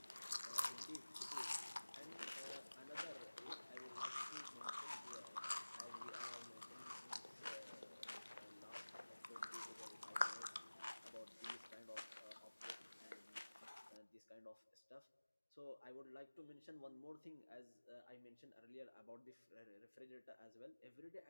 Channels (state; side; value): inverted; both; correlation -1.00